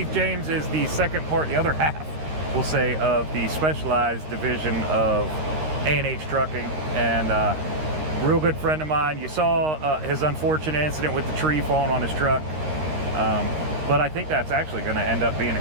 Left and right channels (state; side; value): late; left; 13 ms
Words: James is the the other half, we'll say, of the specialized division of A&H Trucking, and real good friend of mine. You saw his unfortunate incident with the tree falling on his truck, but I think that's actually going to end up being